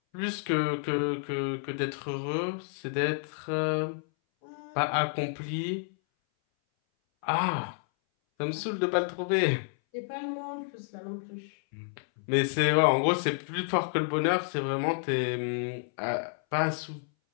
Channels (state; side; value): silent; right; 58 dB below the other